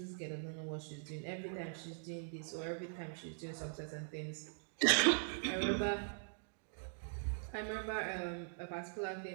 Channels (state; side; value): silent; left; digital silence